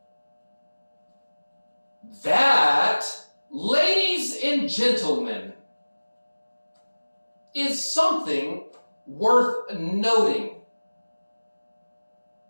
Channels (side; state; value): both; inverted; correlation -1.00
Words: That, ladies and gentlemen, is something worth noting.